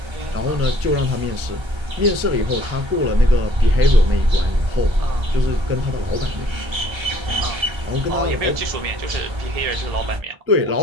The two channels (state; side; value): late; left; 1.3 ms